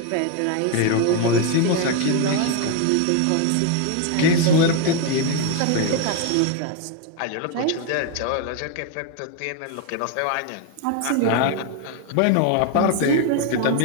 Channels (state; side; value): different; both; correlation 0.01